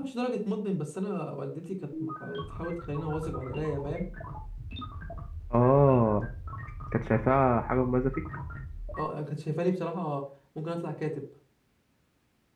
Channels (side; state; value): both; identical; correlation 1.00